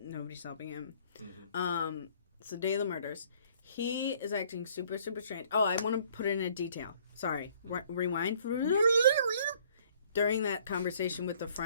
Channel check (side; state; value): both; inverted; correlation -0.59